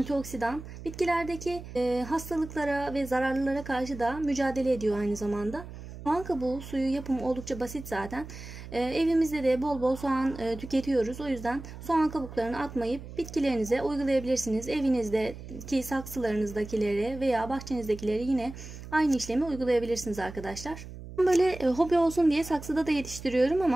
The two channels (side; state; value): right; noise; hum, 13 dB below the sound